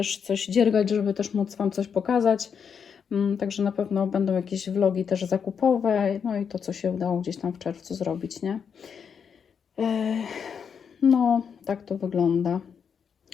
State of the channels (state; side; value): quieter; right; 6.9 dB